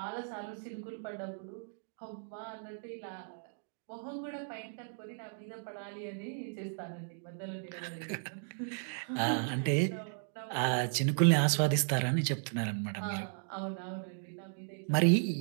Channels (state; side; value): silent; left; digital silence